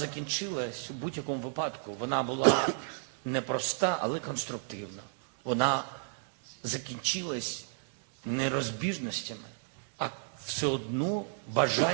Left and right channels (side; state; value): left; silent; digital silence